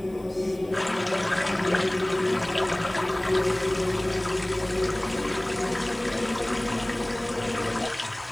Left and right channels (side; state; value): left; noise; hiss, 29 dB below the sound